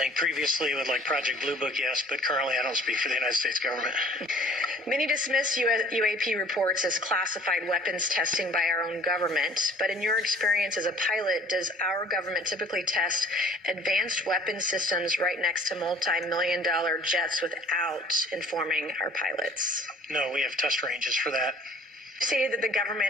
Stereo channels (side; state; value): both; normal; correlation 0.53